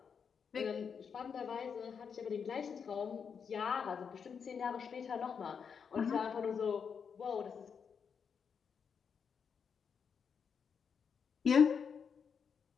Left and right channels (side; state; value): right; quieter; 6.5 dB